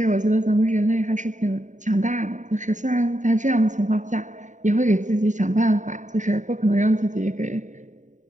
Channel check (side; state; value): left; late; 0.36 ms